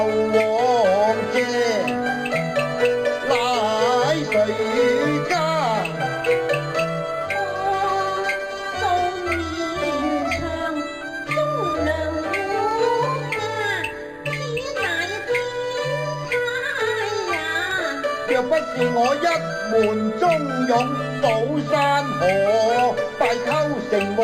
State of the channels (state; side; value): identical; both; correlation 1.00